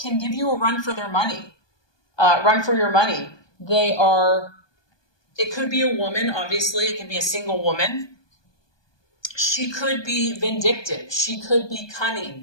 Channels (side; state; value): right; late; 1.2 ms